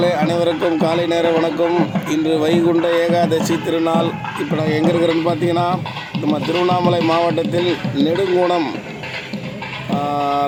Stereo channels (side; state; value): both; identical; correlation 1.00